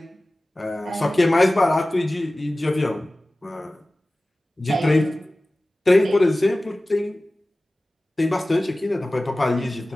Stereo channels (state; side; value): normal; both; correlation 0.97